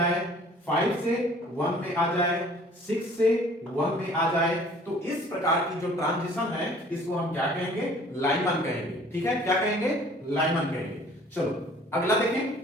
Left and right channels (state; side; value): normal; both; correlation 0.53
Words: 5 से 1 में आ जाए, 6 से 1 में आ जाए। तो इस प्रकार की जो ट्रांजिशन है इसको हम क्या कहेंगे? लाइमन कहेंगे। ठीक है, क्या कहेंगे? लाइमन कहेंगे। चलो अगला देखें,